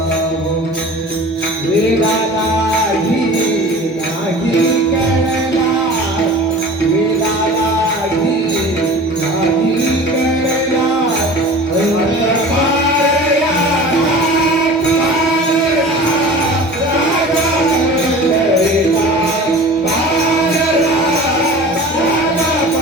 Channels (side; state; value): both; normal; correlation 0.39